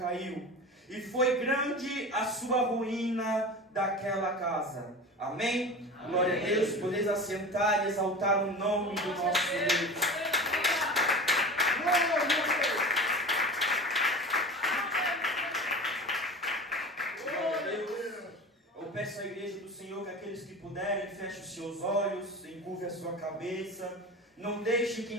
E foi grande a sua ruína daquela casa. Amém? Amém. Glória a Deus. Podeis assentar e exaltar o nome do nosso Deus. Glória a Deus. Eu peço à igreja do Senhor que aqueles que puderem fechem os seus olhos, encurve a sua cabeça. Não deixe que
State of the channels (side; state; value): both; normal; correlation 0.33